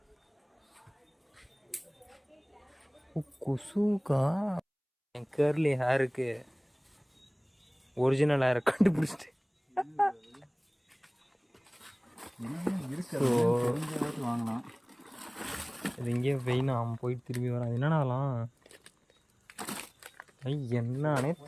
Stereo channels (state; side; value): identical; both; correlation 1.00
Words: கொசுக்கா என் கேர்லி ஹேருக்கு ஒரிஜினல் ஹேரை கண்டுபிடிச்சிட்டு வாங்கலாம். இது இங்கேயே வெயினா அவன் போயிட்டு திரும்பி வரான். என்னன்னா அதெல்லாம் என்னன்னே